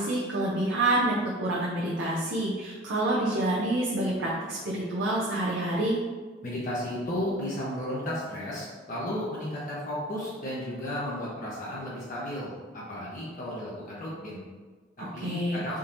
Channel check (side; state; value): both; normal; correlation 0.40